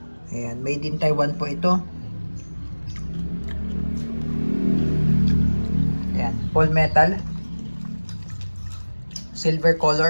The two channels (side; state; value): both; inverted; correlation -1.00